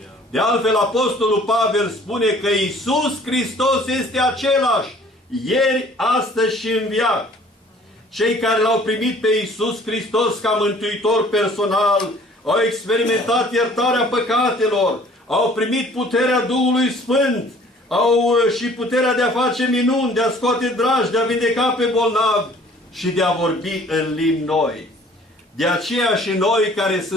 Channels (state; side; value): normal; both; correlation 0.54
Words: De altfel, Apostolul Pavel spune că Iisus Hristos este același ieri, astăzi și în veac. Cei care L-au primit pe Iisus Hristos ca mântuitor personal au experimentat iertarea păcatelor, au primit puterea Duhului Sfânt, au și puterea de a face minuni, de a scoate dragi, de a vindeca pe bolnavi și de a vorbi în limbi noi. De aceea și noi, care